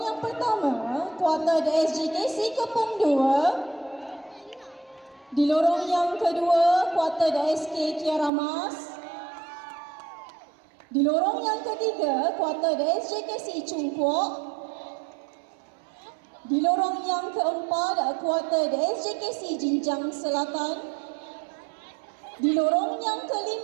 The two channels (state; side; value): drops out; left; at 8.3 s